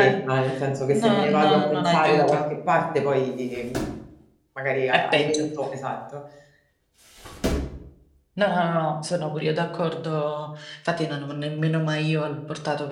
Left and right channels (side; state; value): both; identical; correlation 1.00